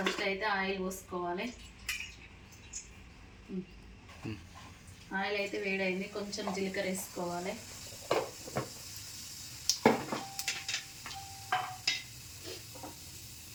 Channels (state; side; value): identical; both; correlation 1.00